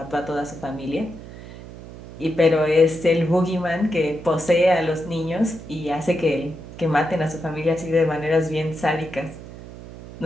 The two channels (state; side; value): noise; right; hum, 15 dB below the sound